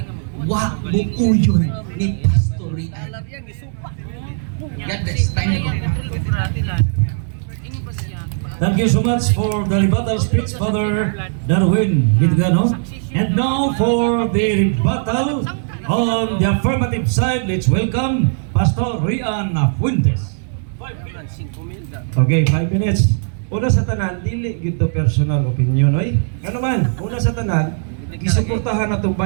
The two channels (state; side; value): silent; left; digital silence